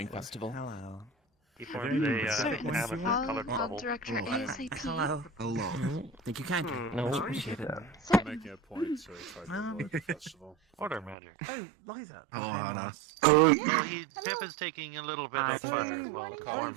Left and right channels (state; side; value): drops out; left; at 11.2 s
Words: festival. Hello. He forms a colored I'll bubble. direct her ASAP. Hello. Think you can? No, appreciate it. I'm making a point to try to avoid the festival. Order magic. Oh, Liza. Oh, Hannah. Jeff is taking a little bit of the